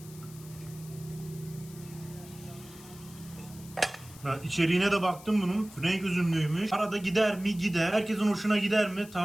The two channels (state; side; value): noise; left; hiss, 19 dB below the sound